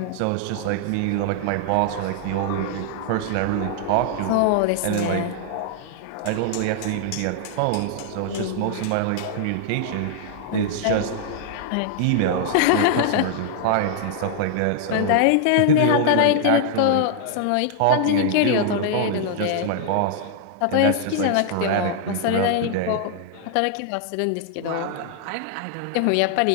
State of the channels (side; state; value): both; different; correlation -0.01